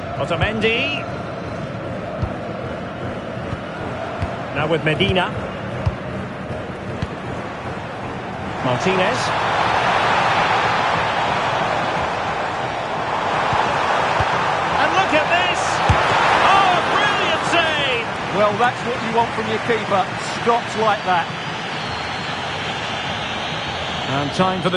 Otamendi. Now with Medina. Martinez. And look at this! Oh, brilliant save! Well, that's what you want from your keeper. Stops like that. And time for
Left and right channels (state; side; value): identical; both; correlation 1.00